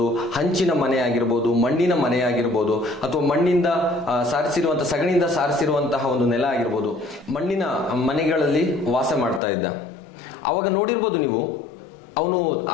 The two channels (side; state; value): right; drops out; at 9.4 s